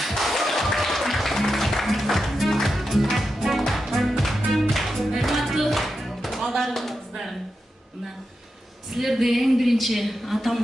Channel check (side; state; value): both; normal; correlation 0.89